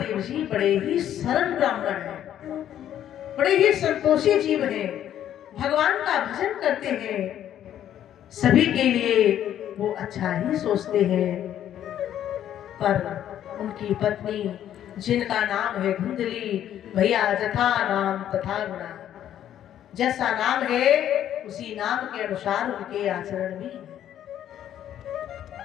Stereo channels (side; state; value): right; quieter; 10.9 dB